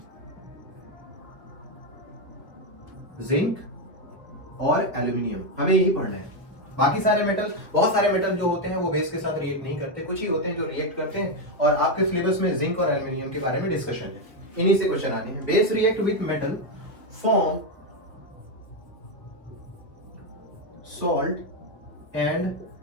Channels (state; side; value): normal; both; correlation 0.05